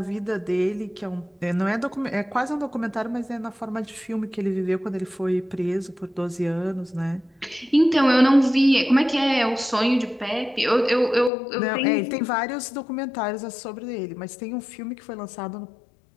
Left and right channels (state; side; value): drops out; right; at 11.3 s